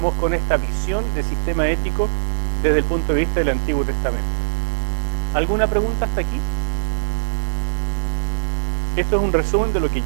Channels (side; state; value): left; silent; 65 dB below the other